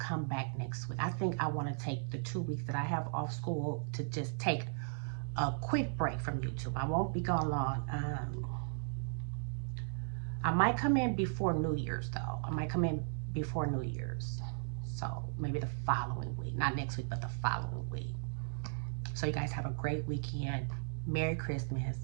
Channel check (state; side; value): silent; left; digital silence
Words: back next week. I think I want to take the 2 weeks that I have off school to just take a quick break from YouTube. I won't be gone long. I might come in before New Year's though. I might come in before New Year's. So maybe the following week. Not next week, but the following week. So you guys have a great weekend. Merry Christmas,